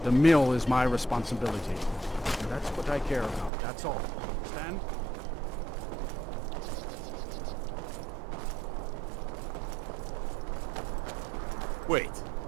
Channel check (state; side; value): drops out; left; at 3.5 s